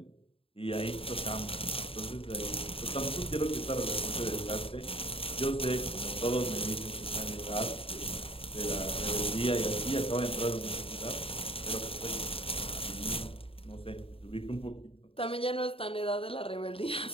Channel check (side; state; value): right; late; 0.27 ms